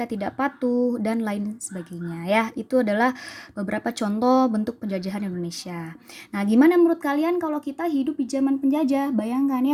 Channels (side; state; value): both; identical; correlation 1.00